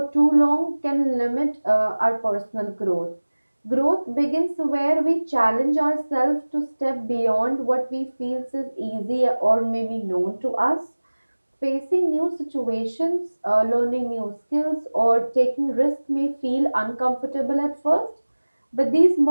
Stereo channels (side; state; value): both; inverted; correlation -1.00